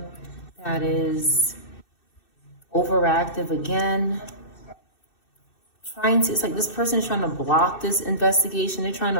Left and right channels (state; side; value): late; right; 2.6 ms